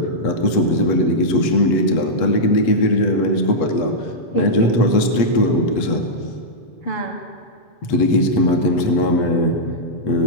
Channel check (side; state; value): right; late; 8.2 ms